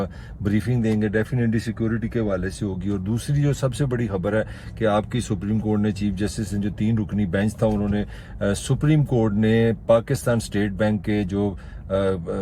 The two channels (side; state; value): both; identical; correlation 1.00